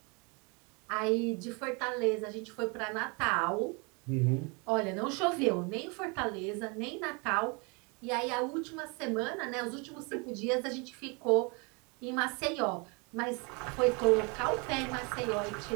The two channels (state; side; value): quieter; left; 31.2 dB